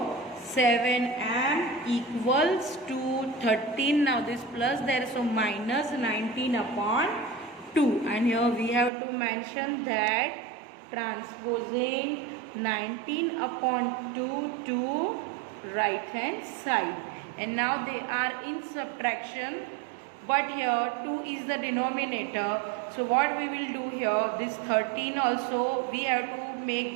7m equals to 13. Now this plus there, so minus 19 upon 2. And here we have to mention that transposing 19 upon 2 to right hand side. And now they are in subtraction, but here 2 is the denominator. So what we will do here, this 13 also we have to make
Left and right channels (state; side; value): drops out; left; at 8.9 s